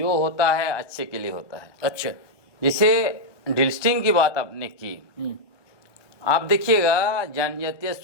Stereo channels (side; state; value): right; late; 1.1 ms